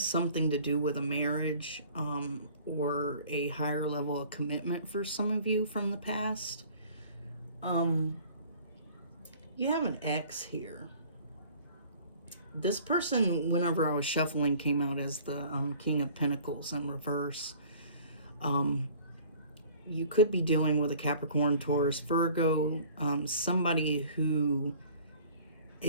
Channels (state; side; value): inverted; both; correlation -0.50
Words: something to do with a marriage or a higher level of commitment for some of you from the past. You have an ex here. This person, whenever I was shuffling, came out as the King of Pentacles in reverse. You could be dealing with a Capricorn, Taurus, Virgo, somebody who